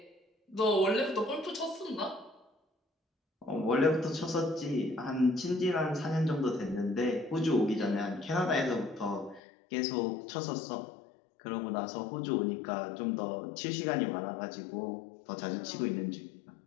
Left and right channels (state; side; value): drops out; right; at 9.4 s